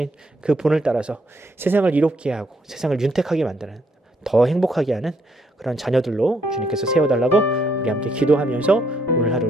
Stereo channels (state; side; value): normal; both; correlation 0.73